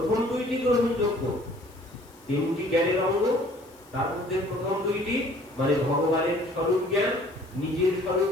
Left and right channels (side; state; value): left; noise; hiss, 27 dB below the sound